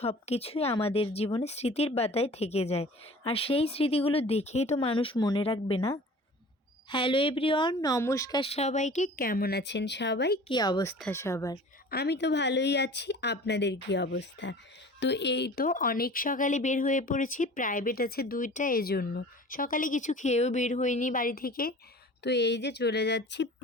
কিছুই আমাদের জীবনে স্মৃতির পাতায় থেকে যায়। আর সেই স্মৃতিগুলো দেখেই তো মানুষ মনে রাখবে, না? হ্যালো এভরিওয়ান, নমস্কার সবাইকে। কেমন আছেন সবাই? কী অবস্থা সবার? আমি তো ভালোই আছি। আপনাদের কী অবস্থা? তো এই তো অনেক সকালে বের হয়ে পড়েছি, প্রাইভেট আছে 2টা, এজন্য সকালে কিছু খেয়েও বের হইনি বাড়ি থেকে। তো এই যে চলে যাচ্ছি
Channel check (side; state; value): both; normal; correlation 0.43